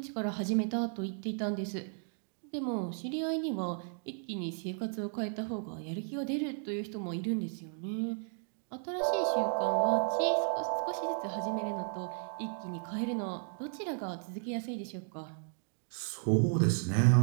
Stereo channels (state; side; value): silent; left; 55 dB below the other